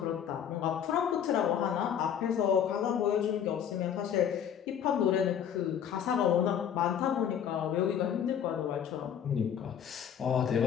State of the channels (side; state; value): right; quieter; 8.9 dB